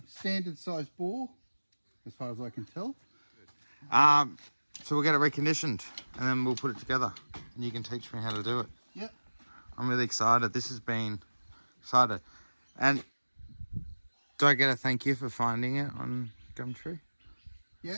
standard size bore, as far as I can tell. So we'll get it reconditioned and then we'll put it together and you can teach me how to do it. Yep. I'm really excited. This has been excited. And do I get a thank you for finding it on Gumtree?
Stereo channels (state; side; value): inverted; both; correlation -1.00